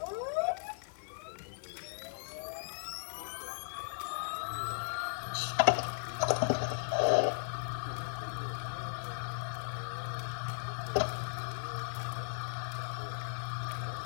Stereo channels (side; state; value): right; silent; 53 dB below the other